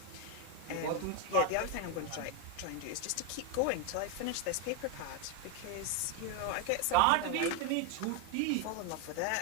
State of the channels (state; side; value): different; both; correlation 0.01